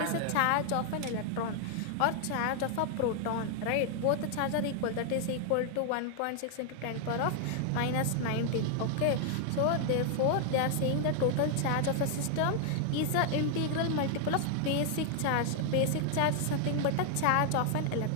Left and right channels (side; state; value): both; different; correlation 0.00